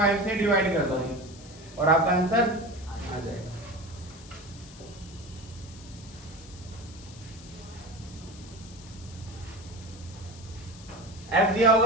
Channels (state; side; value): noise; left; hiss, 19 dB below the sound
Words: से डिवाइड कर दो और आपका आंसर आ जाएगा। f दिया